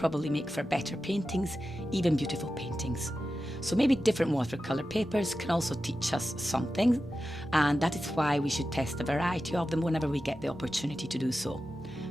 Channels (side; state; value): both; normal; correlation 0.92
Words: make for better paintings, even beautiful paintings. So maybe different watercolour papers can also teach us something, and that is why we should test a variety of them whenever we get the opportunity to do so.